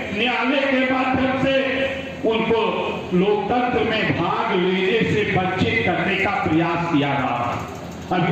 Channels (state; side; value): identical; both; correlation 1.00